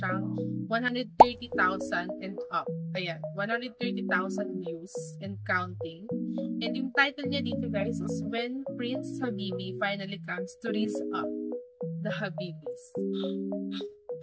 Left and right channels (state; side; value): identical; both; correlation 1.00